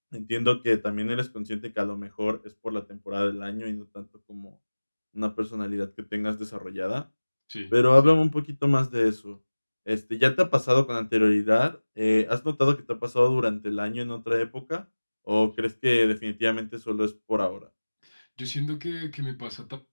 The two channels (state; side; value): inverted; both; correlation -1.00